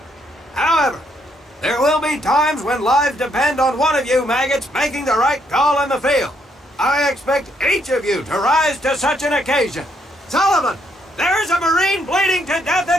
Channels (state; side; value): normal; both; correlation 0.73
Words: However, there will be times when lives depend on one of you maggots making the right call in the field. I expect each of you to rise to such an occasion. Sullivan, there's a Marine bleeding to death in